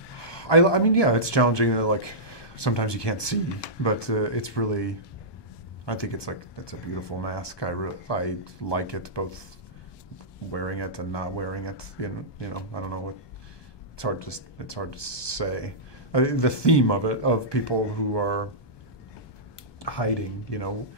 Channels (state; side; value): late; right; 1.2 ms